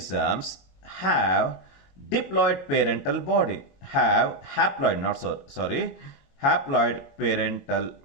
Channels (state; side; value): late; right; 22 ms